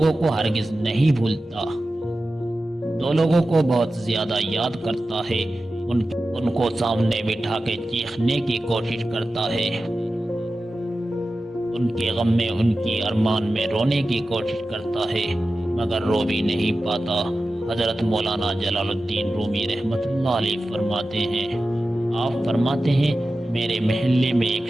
کو ہرگز نہیں بھولتا، دو لوگوں کو بہت زیادہ یاد کرتا ہے، ان کو سامنے بٹھا کے چیخنے کی کوشش کرتا ہے، ان کے غم میں، ان کی ارمان میں رونے کی کوشش کرتا ہے، مگر رو بھی نہیں پاتا۔ حضرت مولانا جلال الدین رومی رحمت اللہ علیہ فرماتے ہیں، آپ فرماتے ہیں، میرے محلے میں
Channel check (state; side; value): normal; both; correlation 0.94